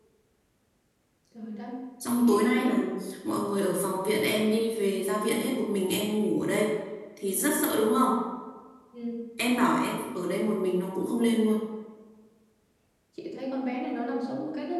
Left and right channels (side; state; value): both; identical; correlation 1.00